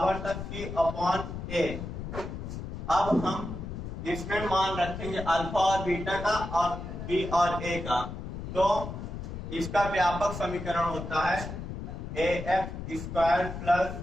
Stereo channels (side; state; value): left; noise; rumble, 7 dB below the sound